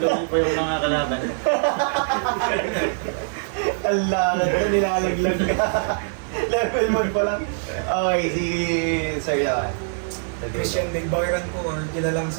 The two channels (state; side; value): silent; left; 63 dB below the other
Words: Lugi po yung mga kalaban. Alangan ka, nilalaglag ka. Level 1 pa lang. Okay, si Sir Yawan. Christian Nagbakiran ko or kilalang